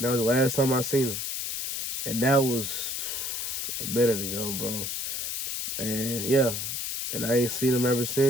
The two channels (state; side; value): noise; left; hiss, 3 dB below the sound